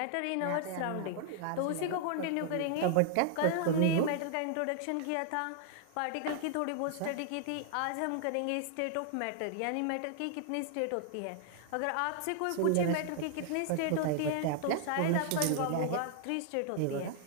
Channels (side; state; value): both; different; correlation 0.00